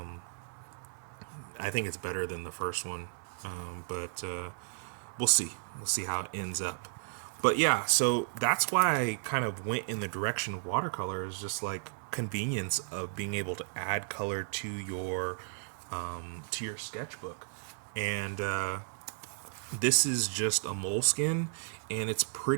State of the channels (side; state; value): left; silent; 55 dB below the other